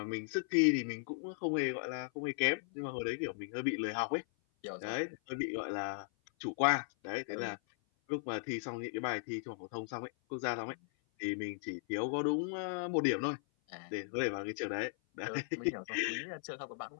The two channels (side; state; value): right; silent; 53 dB below the other